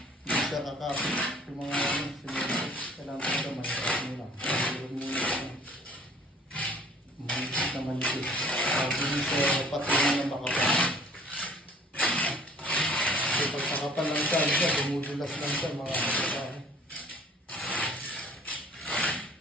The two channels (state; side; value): normal; both; correlation 0.54